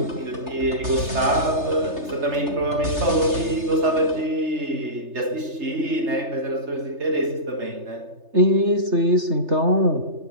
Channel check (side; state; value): left; late; 3.3 ms